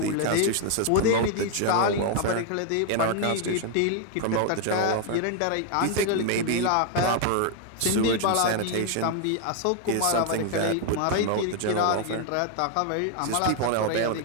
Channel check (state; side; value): different; both; correlation 0.00